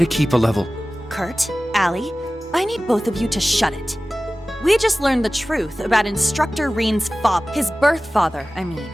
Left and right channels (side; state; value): both; normal; correlation 0.97